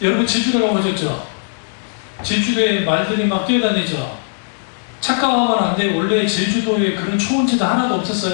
여러분 제주도 가보셨죠? 제주도에 말들이 막 뛰어다니죠? 착각하면 안 돼요. 원래 제주도에 그런 초원지도 하나도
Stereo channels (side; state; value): right; silent; 66 dB below the other